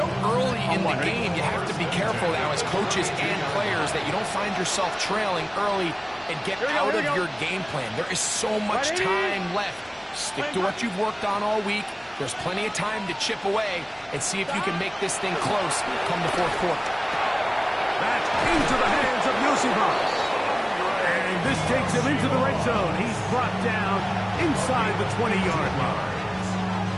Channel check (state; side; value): identical; both; correlation 1.00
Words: early in the game, you have to be careful now as coaches and players that you don't find yourself trailing early and get out of your game plan. There is so much time left. Stick to what you've worked on all week. There's plenty of time to chip away and see if you can make this thing close come the 4th quarter. That's into the hands of Yosibas. And this takes him into the red zone. He's brought down inside the 20-yard line.